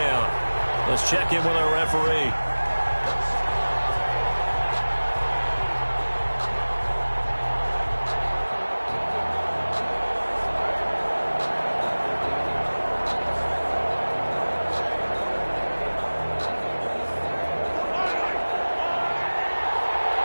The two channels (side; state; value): both; inverted; correlation -1.00